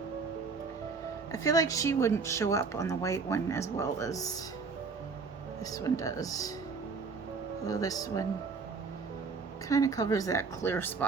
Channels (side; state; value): left; quieter; 4.8 dB